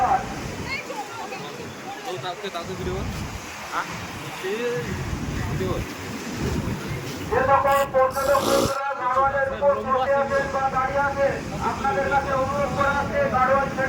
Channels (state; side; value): identical; both; correlation 1.00